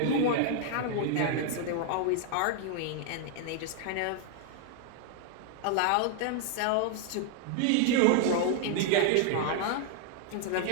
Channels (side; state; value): both; different; correlation 0.00